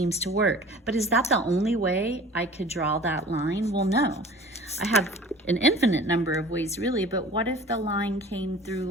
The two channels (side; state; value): both; normal; correlation 0.44